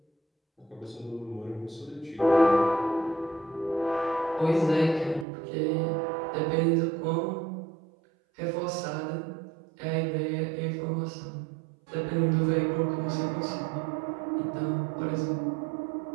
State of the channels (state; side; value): drops out; left; at 5.2 s